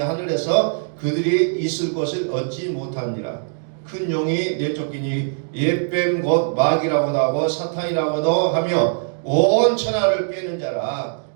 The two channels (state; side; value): silent; left; digital silence